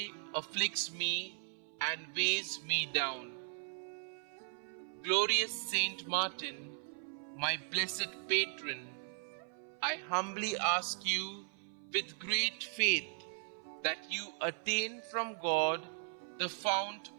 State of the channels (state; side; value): silent; left; 53 dB below the other